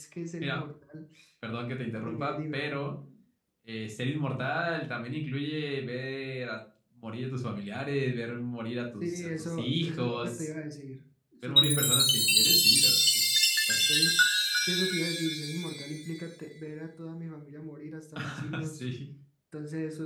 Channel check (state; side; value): identical; both; correlation 1.00